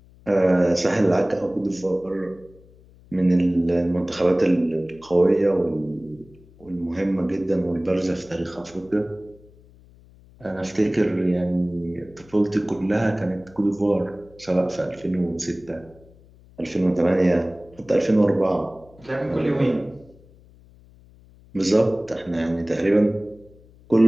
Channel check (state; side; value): noise; left; hum, 26 dB below the sound